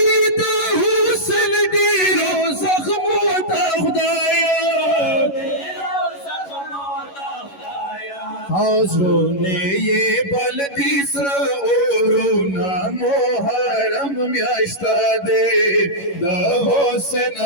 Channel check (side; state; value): right; late; 11 ms